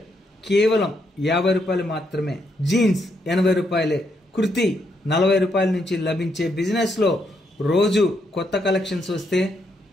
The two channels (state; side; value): normal; both; correlation 0.77